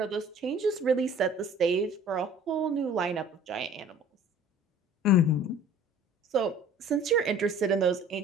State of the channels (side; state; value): both; normal; correlation 0.49